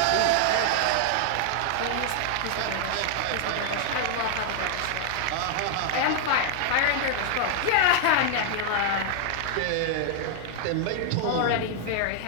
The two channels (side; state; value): both; different; correlation -0.01